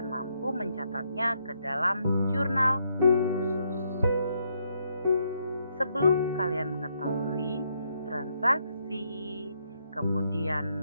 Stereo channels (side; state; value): both; inverted; correlation -0.76